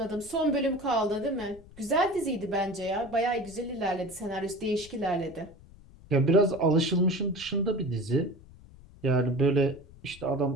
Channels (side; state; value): left; noise; rumble, 21 dB below the sound